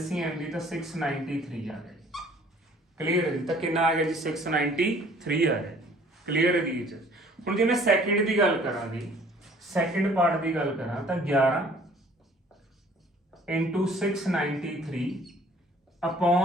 ਦੀ ਤਾਂ 693 ਆ ਗਏ। ਕਲੀਅਰ ਹੈ ਜੀ। ਤਾਂ ਕਿੰਨਾ ਆ ਗਿਆ ਜੀ 693 ਆ ਗਿਆ। ਕਲੀਅਰ ਹੈ ਜੀ। ਹੁਣ ਜੇ ਮੈਂ ਸੈਕਿੰਡ ਦੀ ਗੱਲ ਕਰਾਂ ਜੀ, ਸੈਕਿੰਡ ਪਾਰਟ ਦੀ ਗੱਲ ਕਰਾਂ ਤਾਂ 11 into 693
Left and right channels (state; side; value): normal; both; correlation 0.55